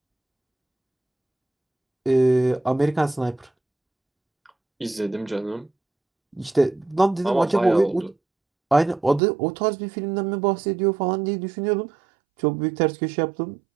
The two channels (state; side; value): drops out; left; at 9.2 s